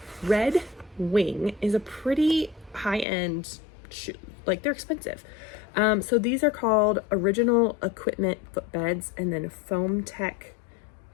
Wing is a pretty high-end shoe. Like, they're expensive. So these are called Original Equipment Footbeds and then Foam Tech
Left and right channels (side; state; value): right; drops out; at 3.1 s